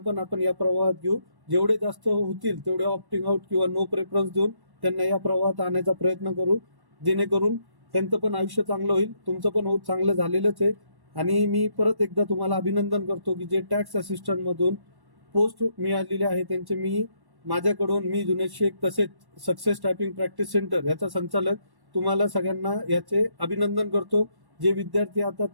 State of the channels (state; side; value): late; left; 1.1 ms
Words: आपण या प्रवाहात घेऊ. जेवढे जास्त होतील तेवढे ऑप्टिंग आउट किंवा नो प्रेफरन्स देऊन त्यांना या प्रवाहात आणण्याचा प्रयत्न करू, जेणेकरून त्यांचं पण आयुष्य चांगलं होईल. तुमचं पण चांगलं झालेलंच आहे. आणि मी परत एकदा तुम्हाला अभिनंदन करतो की जे टॅक्स असिस्टंट मधून पोस्ट मिळालेले आहे त्यांचे माझ्याकडून मी जुनेद शेख तसेच सक्सेस टायपिंग प्रॅक्टिस सेंटर याचा संचालक तुम्हाला सगळ्यांना याचे अभिनंदन करतो. जे विद्यार्थी आता